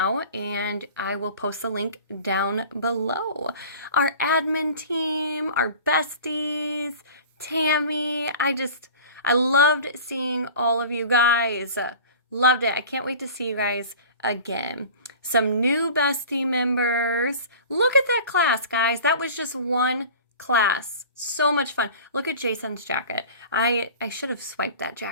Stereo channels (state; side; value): inverted; both; correlation -0.40